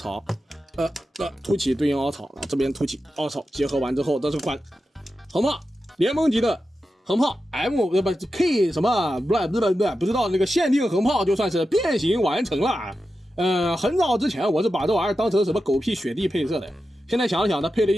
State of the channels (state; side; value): normal; both; correlation 0.91